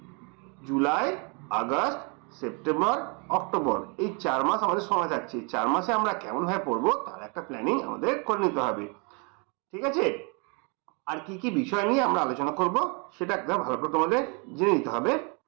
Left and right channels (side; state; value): left; quieter; 33.9 dB